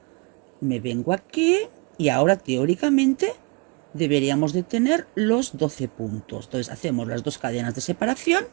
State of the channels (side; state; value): left; quieter; 30.3 dB